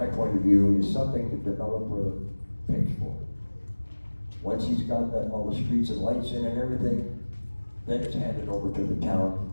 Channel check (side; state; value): both; inverted; correlation -1.00